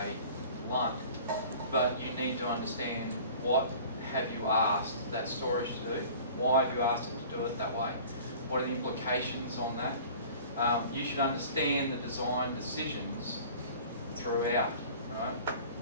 one. But you need to understand what have you asked that storage to do, why have you asked it to do it that way, what are the implications on that. You should understand the design decisions throughout, right?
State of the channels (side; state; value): both; inverted; correlation -0.44